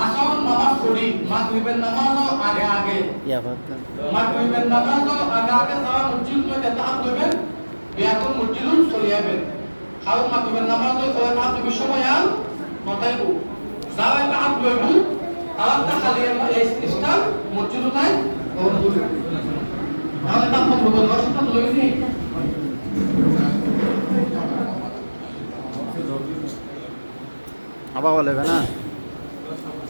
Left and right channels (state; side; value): inverted; both; correlation -1.00